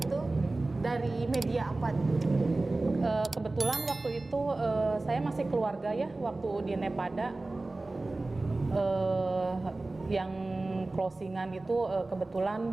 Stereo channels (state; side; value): quieter; left; 3.1 dB